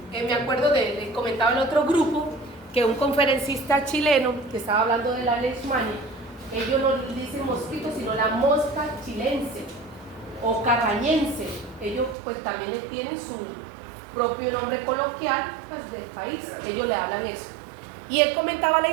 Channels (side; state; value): left; drops out; at 12.2 s